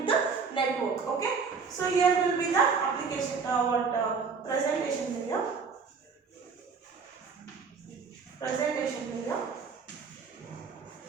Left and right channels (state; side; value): quieter; left; 5.3 dB